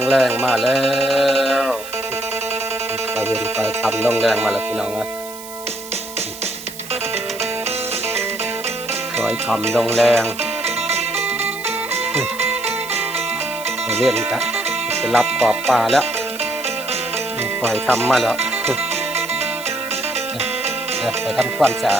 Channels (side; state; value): right; noise; hiss, 14 dB below the sound